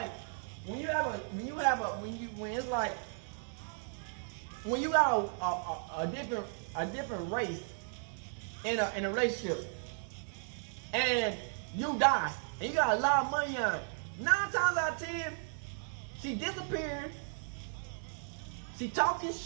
when it's like when you got a different race in a relationship, and you die, and you got a lot of money on it, 9 times out of 10, she disappearing, she talking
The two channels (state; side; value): silent; left; 54 dB below the other